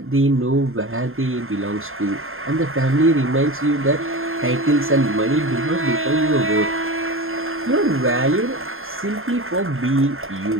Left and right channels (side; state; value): left; late; 0.61 ms